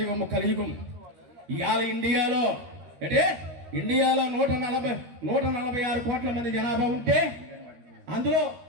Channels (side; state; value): left; late; 13 ms